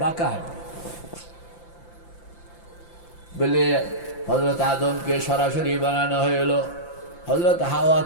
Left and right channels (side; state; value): right; late; 5.8 ms